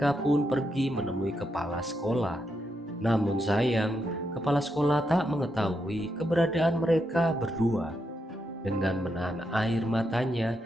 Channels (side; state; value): both; normal; correlation 0.82